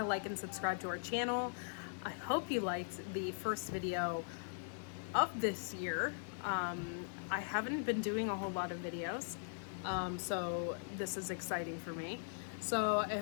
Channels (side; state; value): right; silent; digital silence